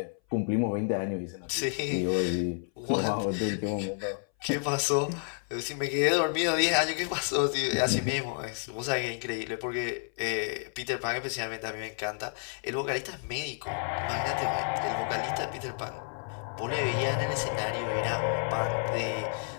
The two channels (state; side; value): silent; right; 58 dB below the other